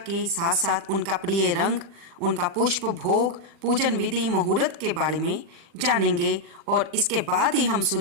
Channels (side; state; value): left; late; 40 ms